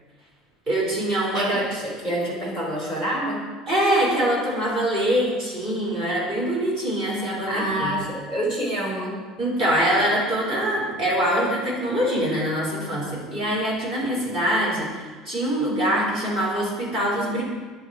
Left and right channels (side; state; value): both; normal; correlation 0.46